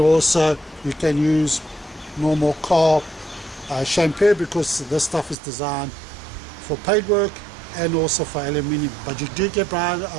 you can use normal car shampoo because this stuff is designed for paintwork and also for aluminium, but you do get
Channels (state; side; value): drops out; left; at 5.4 s